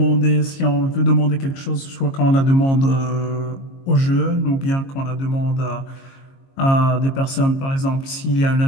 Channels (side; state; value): right; late; 22 ms